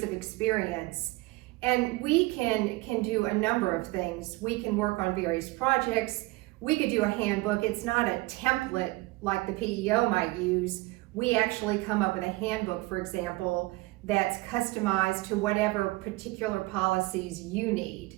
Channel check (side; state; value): left; quieter; 21.5 dB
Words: of experience, and we can do a number of things. We can work on various projects. We could do a handbook. It's not a template like the PEO might use. We actually come up with a handbook, for example, that's customized to whatever particular policies you need.